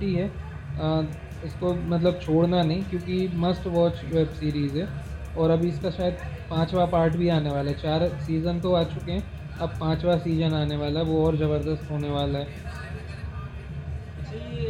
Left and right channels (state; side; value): identical; both; correlation 1.00